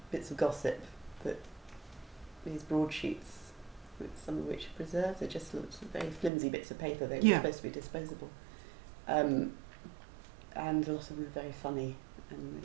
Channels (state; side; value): drops out; left; at 6.3 s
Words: bits of gossip that these broadsheets, some of which are preserved, they're just lots of very flimsy bits of paper. They were supposed to be disposable, and a lot of them were very funny, and